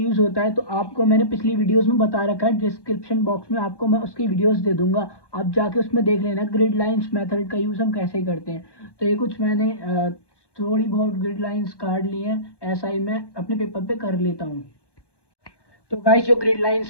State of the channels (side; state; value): right; late; 1.1 ms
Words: होता है, तो आपको मैंने पिछली वीडियोस में बता रखा है। डिस्क्रिप्शन बॉक्स में आपको मैं उसकी वीडियोस दे दूंगा, आप जाके उसमें देख लेना ग्रिड लाइंस मेथड का यूज हम कैसे करते हैं। तो ये कुछ मैंने थोड़ी बहुत ग्रिड लाइंस काट ली हैं, ऐसा ही मैं अपने पेपर पे कर लेता हूँ। तो गाइस, जो ग्रिड